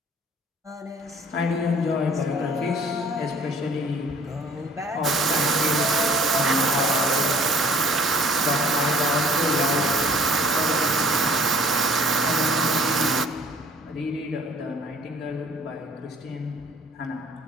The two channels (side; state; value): both; normal; correlation 0.56